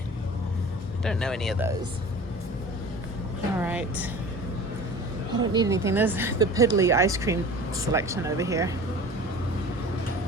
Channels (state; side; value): normal; both; correlation 0.40